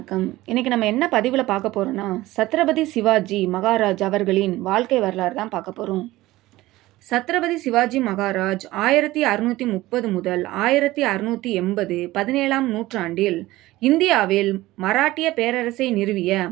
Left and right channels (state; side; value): quieter; left; 17.6 dB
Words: இன்றைக்கி நம்ம என்ன பதிவில் பார்க்க போகிறோன்னா, சத்ரபதி சிவாஜி மகாராஜ் அவர்களின் வாழ்க்கை வரலாறு தான் பார்க்க போகிறோம். சத்ரபதி சிவாஜி மகாராஜ் 1630 முதல் 1680 17ஆம் நூற்றாண்டில் இந்தியாவில் மராட்டிய பேரரசை நிறுவிய